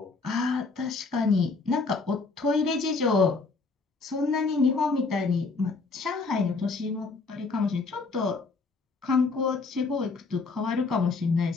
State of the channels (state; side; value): quieter; right; 4.1 dB